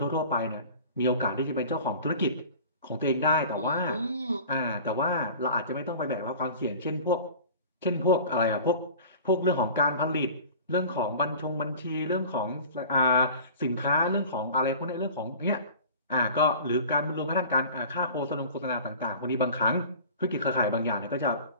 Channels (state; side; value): inverted; both; correlation -0.41